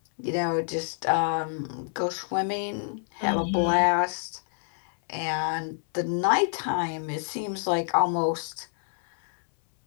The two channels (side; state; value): right; silent; 60 dB below the other